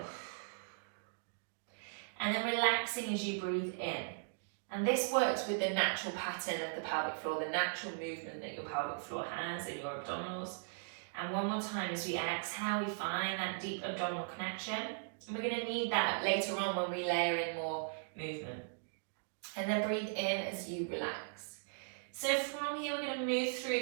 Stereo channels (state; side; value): silent; left; digital silence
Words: And then relaxing as you breathe in. And this works with the natural pattern of the pelvic floor, the natural movement that your pelvic floor has and your abdominals. And one more time as we exhale, we find that deep abdominal connection. And we're going to need that later on when we layer in more movement. And then breathe in as you relax. So from here, we're going to move through